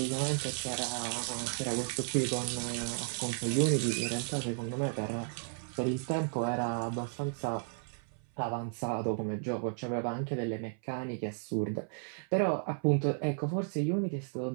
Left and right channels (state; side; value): silent; left; 55 dB below the other